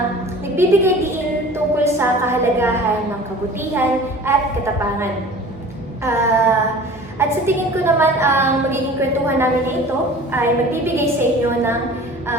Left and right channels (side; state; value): both; normal; correlation 0.42